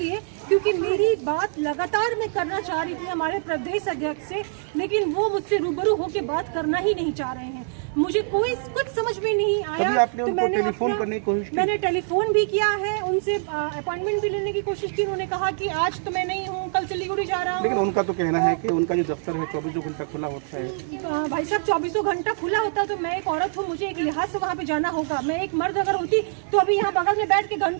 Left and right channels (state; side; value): silent; left; digital silence